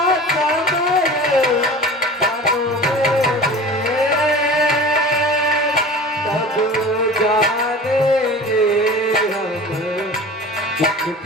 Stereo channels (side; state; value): both; normal; correlation 0.38